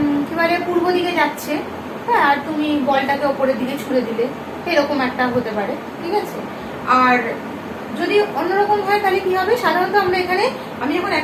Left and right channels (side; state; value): both; identical; correlation 1.00